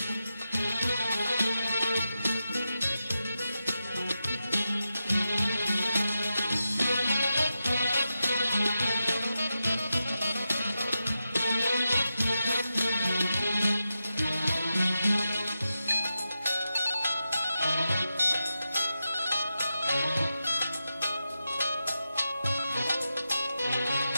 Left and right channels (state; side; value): inverted; both; correlation -0.90